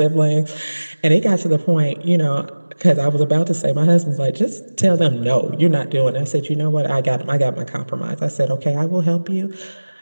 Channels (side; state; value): both; inverted; correlation -1.00